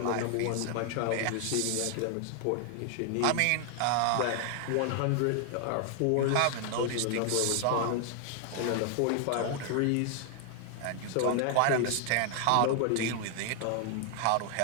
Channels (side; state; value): both; different; correlation 0.00